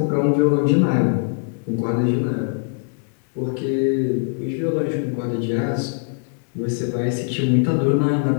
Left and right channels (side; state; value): right; silent; 65 dB below the other